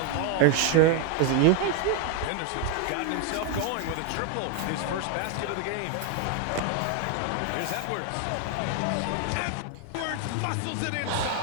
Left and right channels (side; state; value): both; different; correlation 0.01